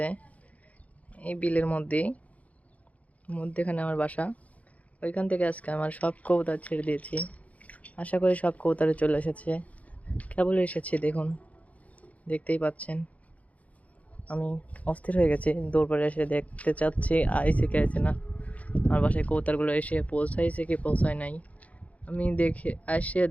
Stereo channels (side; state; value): right; late; 0.069 ms